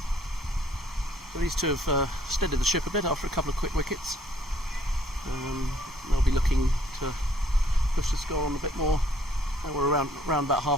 So these two have steadied the ship a bit after a couple of quick wickets. They'll be looking to push the score on a bit more. We're around about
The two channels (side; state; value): both; normal; correlation 0.62